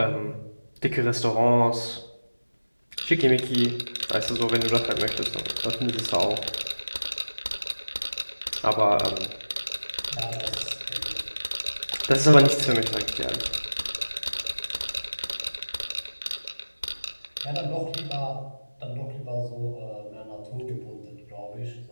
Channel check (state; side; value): inverted; both; correlation -1.00